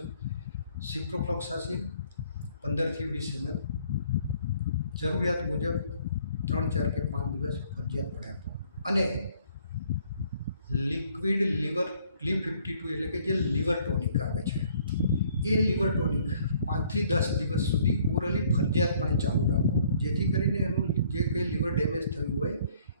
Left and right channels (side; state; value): both; inverted; correlation -0.61